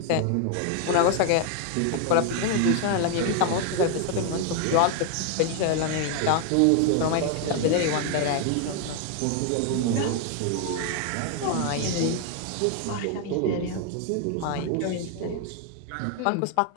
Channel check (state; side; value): different; both; correlation 0.01